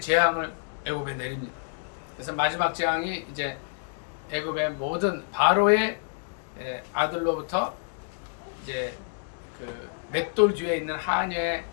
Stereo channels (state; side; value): silent; right; 59 dB below the other